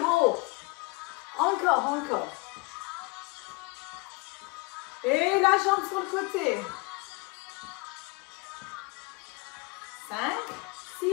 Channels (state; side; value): quieter; right; 27.1 dB